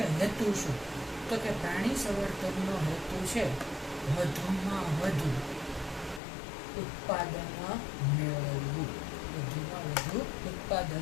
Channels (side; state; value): right; drops out; at 6.2 s